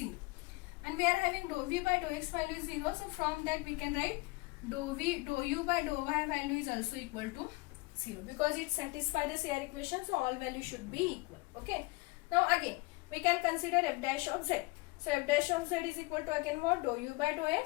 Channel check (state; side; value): quieter; right; 25.0 dB